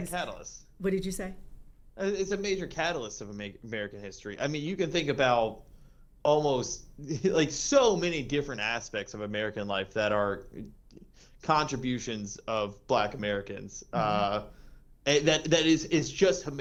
What did you say? It's a major catalyst of American history. I mean, you can think about almost like so many different aspects of American life that are contributions of Black Americans. That is just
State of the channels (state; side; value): identical; both; correlation 1.00